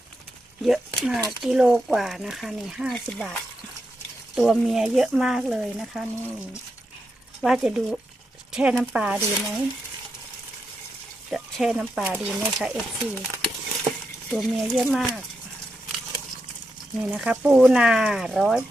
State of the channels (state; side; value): normal; both; correlation 0.85